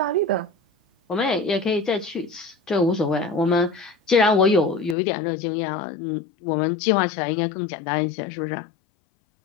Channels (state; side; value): drops out; right; at 5.0 s